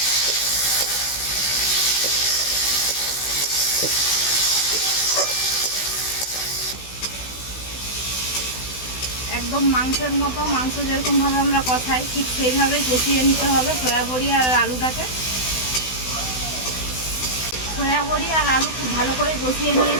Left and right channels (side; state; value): right; late; 16 ms